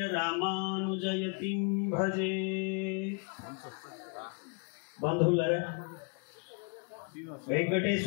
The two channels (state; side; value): quieter; right; 37.9 dB